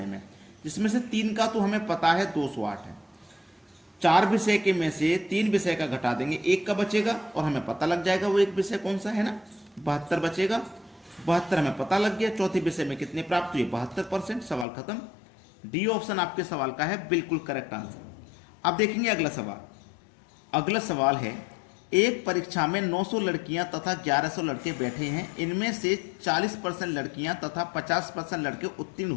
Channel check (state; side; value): drops out; right; at 14.7 s